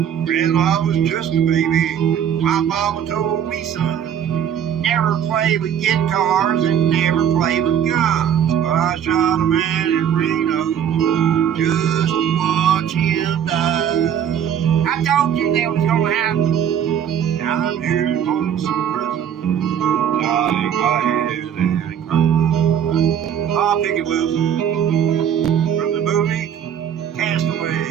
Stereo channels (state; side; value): quieter; left; 9.0 dB